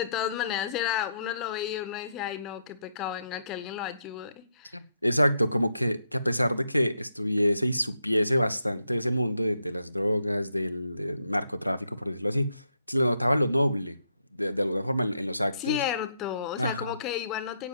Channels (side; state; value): both; inverted; correlation -0.77